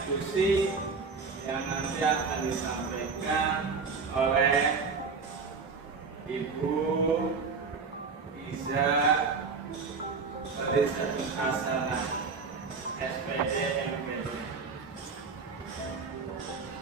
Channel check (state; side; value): quieter; left; 4.8 dB